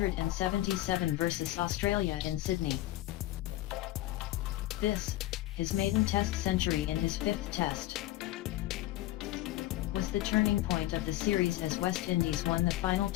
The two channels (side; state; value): right; quieter; 15.9 dB